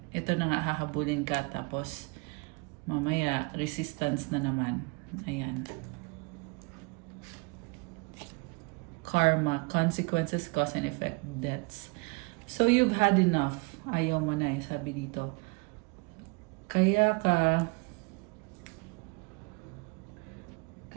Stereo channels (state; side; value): quieter; left; 30.0 dB